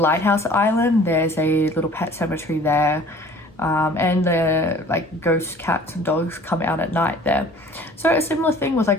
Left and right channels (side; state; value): both; normal; correlation 0.49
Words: island, there's a little pet cemetery there, and the like ghost cats and dogs come out at night there. So a similar thing with